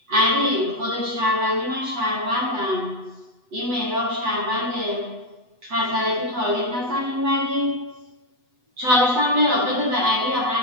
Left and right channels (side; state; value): left; late; 8.0 ms